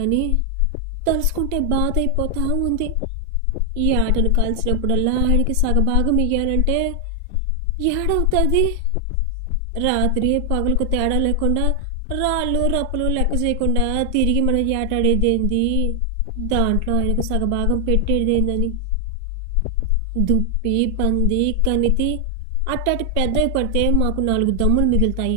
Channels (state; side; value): different; both; correlation 0.00